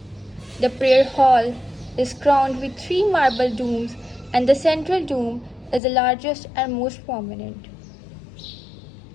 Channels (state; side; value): drops out; right; at 5.8 s